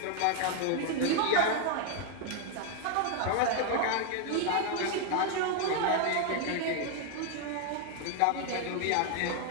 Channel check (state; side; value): different; both; correlation 0.00